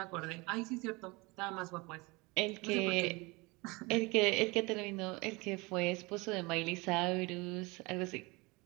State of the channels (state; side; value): quieter; left; 25.3 dB